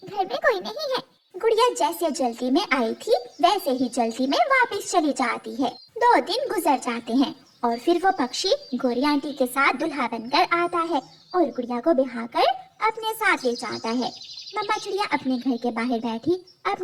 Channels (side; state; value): both; identical; correlation 1.00